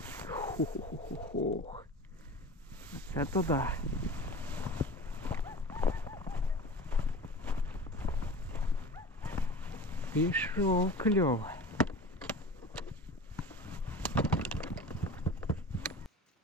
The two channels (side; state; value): both; normal; correlation 0.36